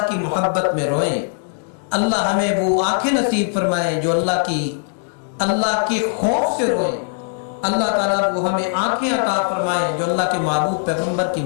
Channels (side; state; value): right; silent; digital silence